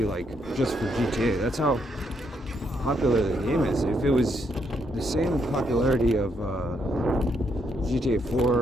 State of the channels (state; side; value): normal; both; correlation 0.76